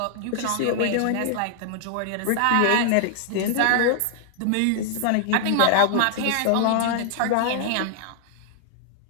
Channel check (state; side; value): different; both; correlation -0.01